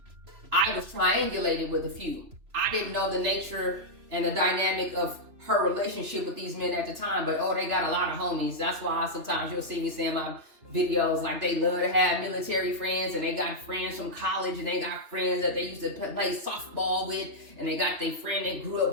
I was triangulated with a few. I didn't know the nature and the dynamic of her relationship with these men at the time, but oh, they got a lot of homies. That's why sometimes you'll see me saying my videos like they love to have military friends, and they got friends from college, and they got friends that they used to play softball with, and they got their friend they grew up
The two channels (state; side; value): late; left; 3.0 ms